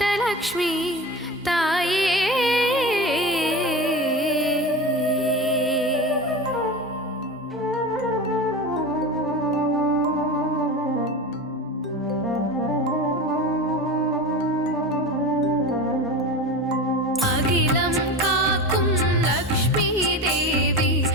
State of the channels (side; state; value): both; normal; correlation 0.28